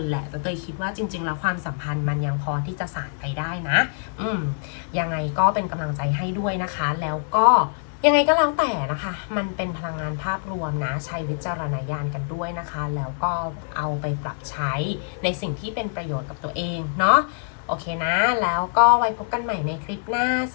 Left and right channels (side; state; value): right; silent; 62 dB below the other